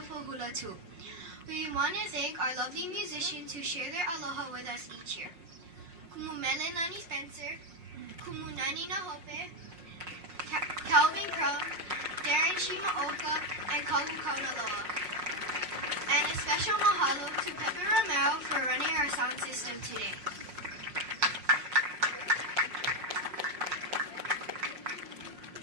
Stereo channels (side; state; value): left; late; 5.6 ms